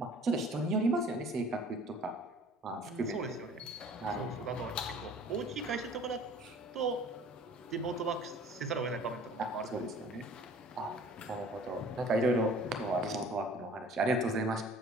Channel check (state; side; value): normal; both; correlation 0.49